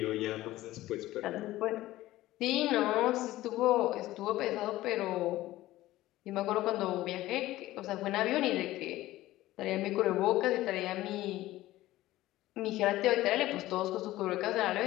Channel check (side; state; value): right; quieter; 16.3 dB